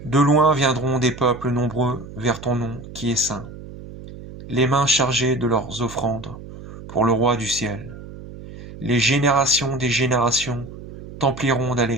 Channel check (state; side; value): noise; right; hum, 14 dB below the sound